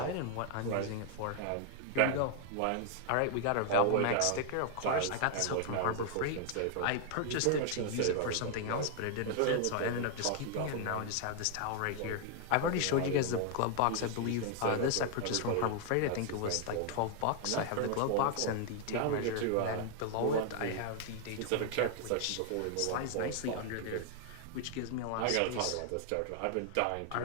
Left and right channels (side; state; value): both; different; correlation 0.00